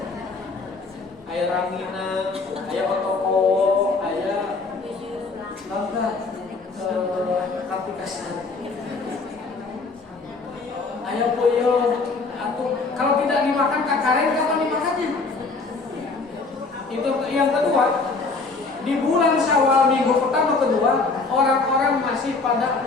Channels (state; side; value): quieter; right; 4.0 dB